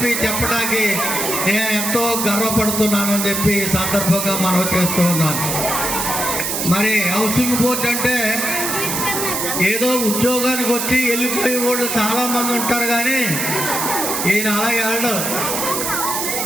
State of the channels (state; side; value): noise; right; hiss, 1 dB below the sound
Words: చెప్పడానికి నేను ఎంతో గర్వపడుతున్నానని చెప్పి ఈ సందర్భంగా మనం చేస్తూ ఉన్నాను. మరి హౌసింగ్ బోర్డు అంటే ఏదో ఉద్యోగానికి వచ్చి వెళ్ళిపోయే వాళ్ళు చాలామంది ఉంటారు, కానీ ఈయన అలాగే వెళ్ళడు.